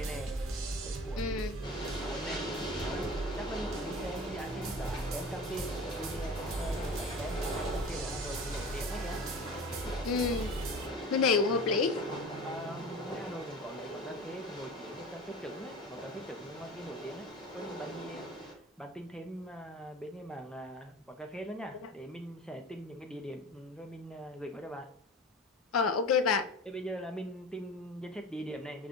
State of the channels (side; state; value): both; normal; correlation 0.37